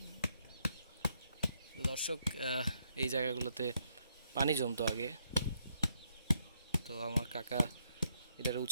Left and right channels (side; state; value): both; inverted; correlation -0.76